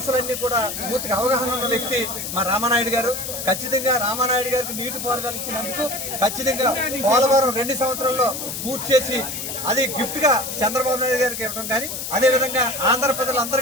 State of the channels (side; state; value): left; noise; hiss, 6 dB below the sound